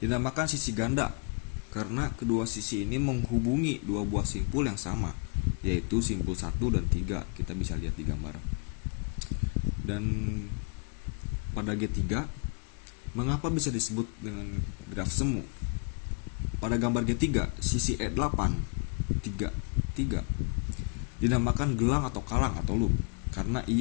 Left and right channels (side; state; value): right; quieter; 36.6 dB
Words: dinamakan sisi ganda karena kedua sisi ini menghubungi dua buah simpul yang sama, yaitu simpul 1 dan 3. Kita bisa lihat di gambar. Dan pada G3, mengapa bisa disebut dengan graf semu? Pada gambar G3, sisi E8 3 dinamakan gelang atau kalang atau loop karena